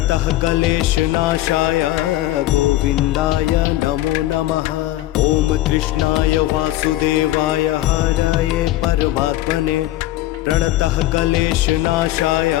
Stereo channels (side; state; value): right; quieter; 15.4 dB